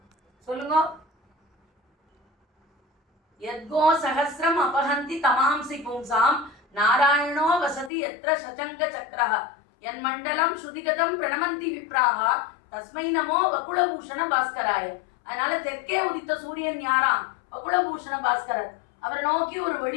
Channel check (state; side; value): drops out; right; at 7.9 s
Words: சொல்லுங்க. யத்கோ சஹஸ்ரம் அபஹந்தி தமாம்சி பும்சாம் நாராயணோ வசதி எத்ர சச்சங்க சக்ரஹ என் மண்டலம் ஸ்ருதிகதம் பிரணமந்தி விப்ராஹா தஸ்மை நமோ வகுளபூஷண பாஸ்கராய. அதனால தெற்கே உதித்த சூரியன் யாராம்? வகுளபூஷண பாஸ்கரர். அவரை நோக்கி ஒரு